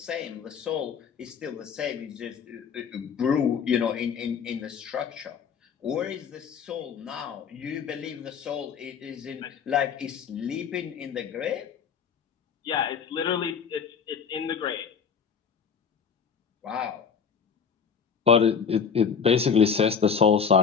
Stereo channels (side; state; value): right; quieter; 6.6 dB